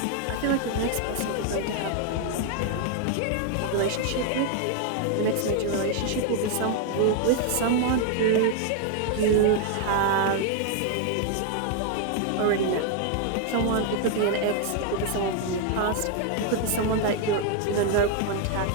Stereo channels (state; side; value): different; both; correlation 0.00